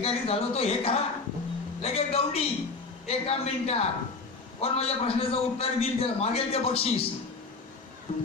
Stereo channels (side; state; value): right; quieter; 4.1 dB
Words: झालो तो हे करा. लगेच गवडी 1 मिनिटात कोण माझ्या प्रश्नाचं उत्तर देईल त्याला मागेल ते बक्षीस.